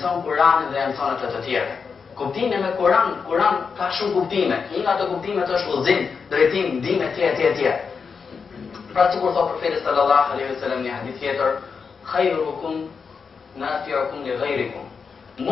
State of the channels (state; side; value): quieter; right; 5.6 dB